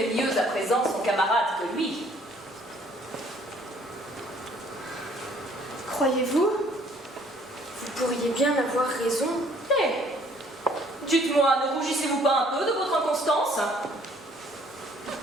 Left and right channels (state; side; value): normal; both; correlation 0.60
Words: mieux à présent son camarade que lui. Croyez-vous? Vous pourriez bien avoir raison. Eh, dites-moi, ne rougissez-vous pas un peu de votre inconstance?